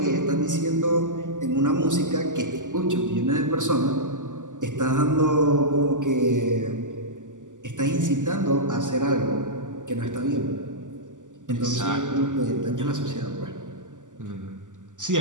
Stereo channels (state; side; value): late; left; 0.87 ms